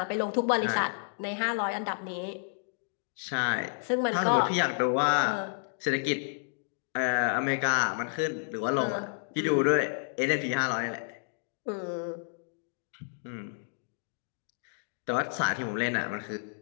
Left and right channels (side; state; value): right; silent; digital silence